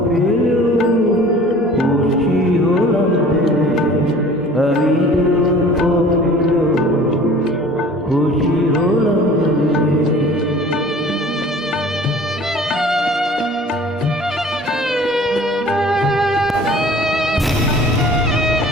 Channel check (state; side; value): normal; both; correlation 0.47